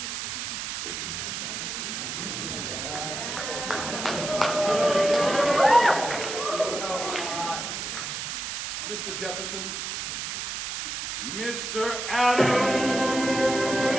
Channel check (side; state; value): right; noise; hiss, 4 dB below the sound